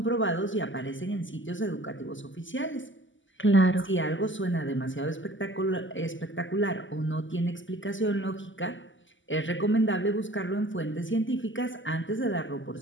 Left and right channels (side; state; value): right; late; 0.55 ms